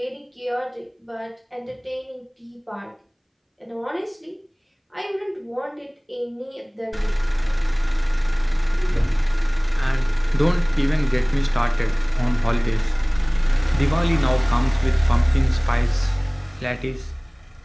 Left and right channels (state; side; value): identical; both; correlation 1.00